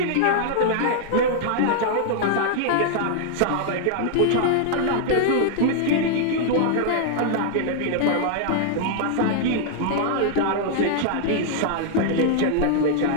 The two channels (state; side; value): different; both; correlation -0.01